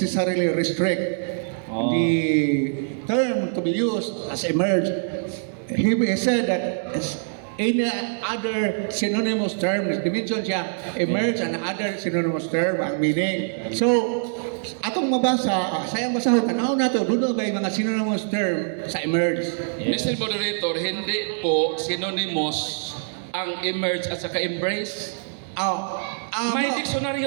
restrict the term to be used as emerge. He said that any other synonymous term, dimension siya, emerge and other synonymous term ang meaning. So, atong mabasa, sayang basahon, tanaw na to, doon may mga synonymous term sa emerge. Mr. Moderator, hindi po synonymous ang emerge at saka embrace. May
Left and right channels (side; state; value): left; silent; digital silence